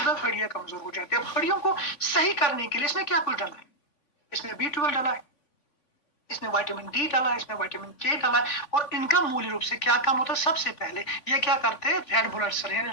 है हड्डियां कमजोर हो जाती है। अब हड्डियों को सही करने के लिए इसमें क्या कुछ डाला है, इसमें B12 डाला है, इसमें विटामिन डी डाला है, इसमें विटामिन के डाला है, और इनका मूल रूप से क्या काम होता है, सबसे पहले ये क्या करते हैं, रेड ब्लड सेल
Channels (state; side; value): late; right; 3.4 ms